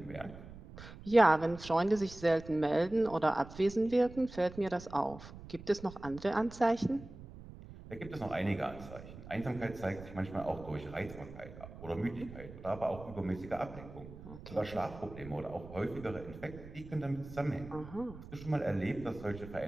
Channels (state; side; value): noise; right; rumble, 15 dB below the sound